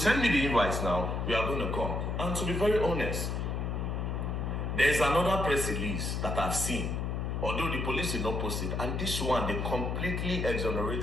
me the invites now. We are going to come. And to be very honest, there's another press release that I've seen, although the police did not post it, and this one, they completely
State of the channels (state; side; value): noise; left; hum, 1 dB below the sound